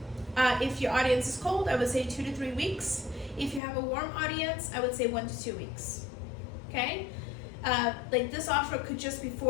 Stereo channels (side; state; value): right; drops out; at 3.6 s